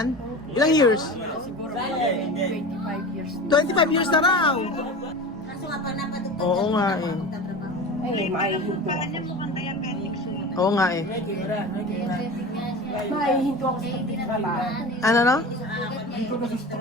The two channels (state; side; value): normal; both; correlation 0.32